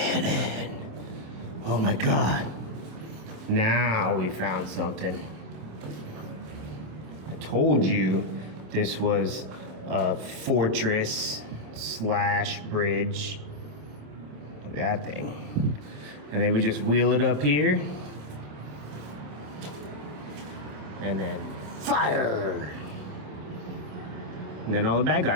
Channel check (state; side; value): late; left; 27 ms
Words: Oh my god! Now we found something. I told you this was a fortress slash bridge. Look at that thing. And they would just wheel it up here. And then fire! And then all the bad